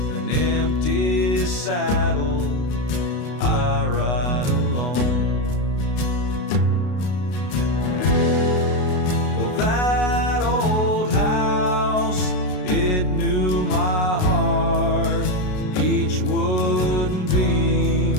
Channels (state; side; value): late; right; 33 ms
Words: An empty saddle, I ride alone. Well, that old house, it knew my heart. Each wooden